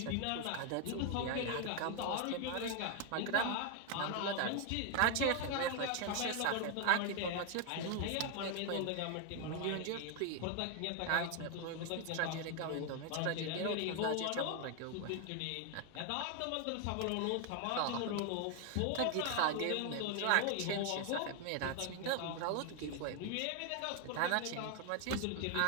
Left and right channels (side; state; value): both; different; correlation 0.01